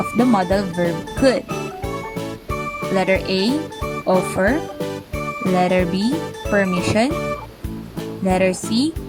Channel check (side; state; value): both; identical; correlation 1.00